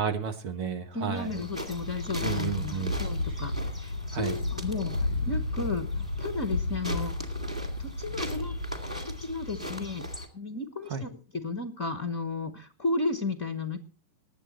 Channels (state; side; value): inverted; both; correlation -0.43